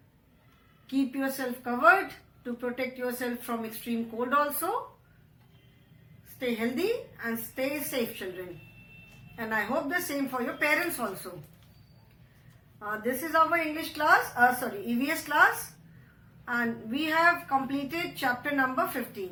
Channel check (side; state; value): both; identical; correlation 1.00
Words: Keep yourself covered to protect yourself from extreme cold also. Stay healthy and stay safe, children. And I hope the same for your parents also. This is our English class, EVS class, and we have completed chapter number